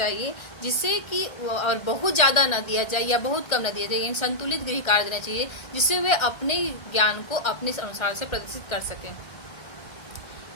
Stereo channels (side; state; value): right; late; 1.3 ms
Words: जिससे कि और बहुत ज़्यादा ना दिया जाए या बहुत कम ना दिया जाए, यानी संतुलित गृह कार्य देना चाहिए जिससे वे अपने ज्ञान को अपने अनुसार से प्रदर्शित कर सकें।